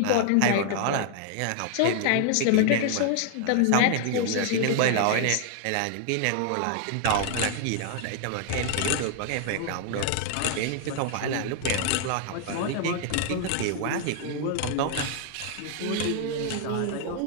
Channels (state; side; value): different; both; correlation 0.00